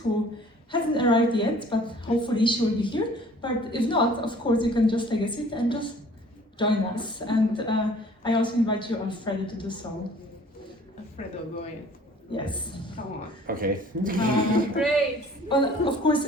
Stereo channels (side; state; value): both; normal; correlation 0.52